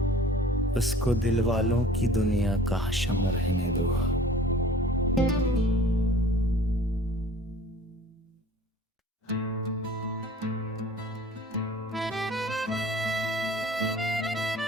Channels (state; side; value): normal; both; correlation 0.48